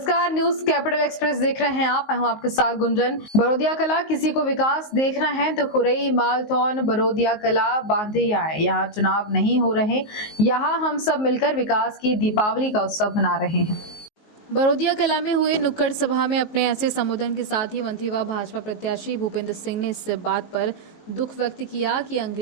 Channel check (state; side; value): late; right; 19 ms